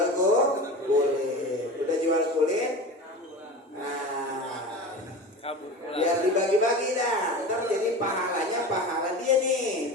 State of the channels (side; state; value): both; normal; correlation 0.31